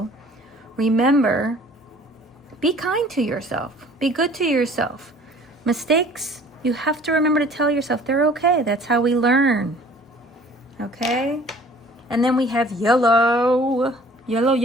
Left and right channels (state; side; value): normal; both; correlation 0.51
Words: remember, be kind to yourself. Be good to yourself. Mistakes, you have to remember to tell yourself they're okay. That's how we learn. Okay? And then we have yellow. Yellow,